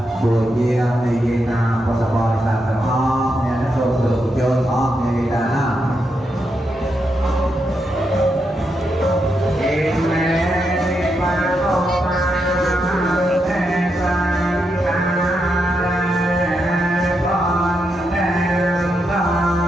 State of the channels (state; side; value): normal; both; correlation 0.83